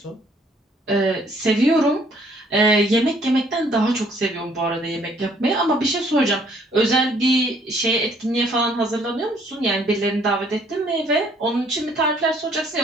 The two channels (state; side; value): normal; both; correlation 0.62